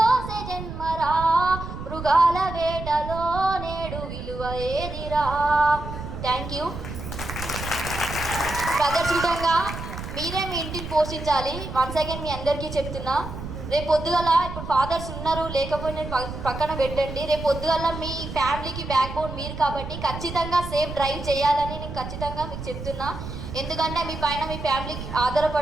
జన్మరా, మృగాల వేటలో నేడు విలువ ఏదిరా. Thank you brothers. విధంగా మీరే మీ ఇంటిని పోషించాలి. వన్స్ అగైన్ మీ అందరికీ చెప్తున్నా, రేపు పొద్దుగల ఇప్పుడు ఫాదర్స్ ఉన్నారు లేకపోయినా పక్కన పెట్టండి. రేపు పొద్దుగల మీ ఫ్యామిలీకి బ్యాక్ బోన్ మీరు కాబట్టి ఖచ్చితంగా సేఫ్ డ్రైవ్ చేయాలని నేను ఖచ్చితంగా మీకు చెప్తున్నా. ఎందుకంటే మీ పైన మీ ఫ్యామిలీకి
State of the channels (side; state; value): right; noise; rumble, 8 dB below the sound